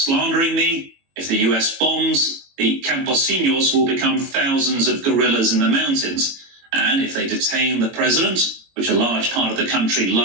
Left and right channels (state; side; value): late; left; 22 ms